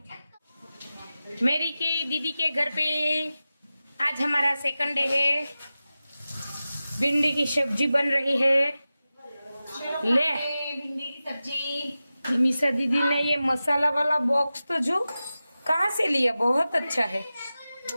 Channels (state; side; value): inverted; both; correlation -0.95